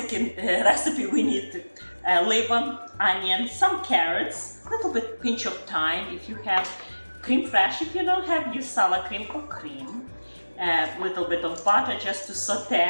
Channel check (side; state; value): both; inverted; correlation -1.00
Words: recipe, we need liver, onion, some carrots, a little bit pinch of thyme. If you have cream fresh, if you don't have, use sour cream or cream. A little bit of butter just to